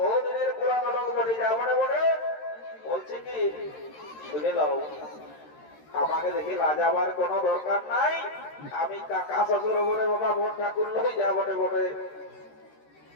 পুরানো লোক বটে, যা বটে বটে। বলছে কি শুনে নাও, আমাকে দেখে লাজাবার কোনো দরকার নাই, আমি কাকা শ্বশুর বলে বাবা, বোন ঠাকুর লোক, যা বটে বটে।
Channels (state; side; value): late; right; 13 ms